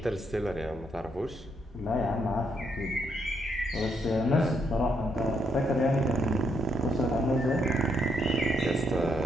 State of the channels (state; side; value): normal; both; correlation 0.76